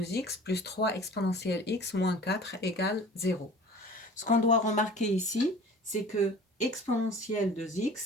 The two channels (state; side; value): normal; both; correlation 0.43